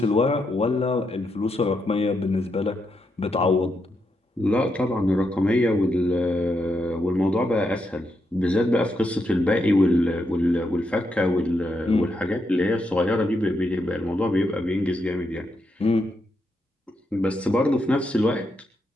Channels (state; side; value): normal; both; correlation 0.82